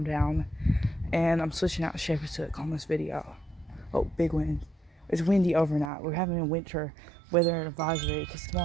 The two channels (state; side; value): drops out; left; at 5.9 s